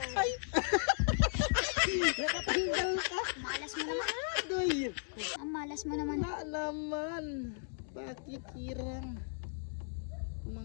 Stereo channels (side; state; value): right; silent; digital silence